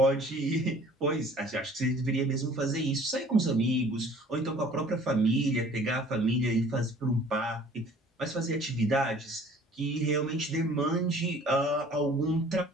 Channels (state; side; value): normal; both; correlation 0.52